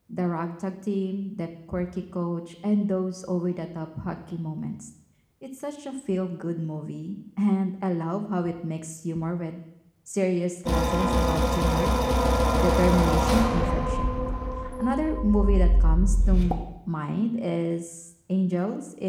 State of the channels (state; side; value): identical; both; correlation 1.00